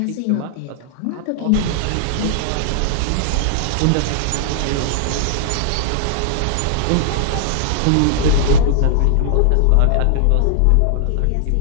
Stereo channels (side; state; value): both; different; correlation -0.01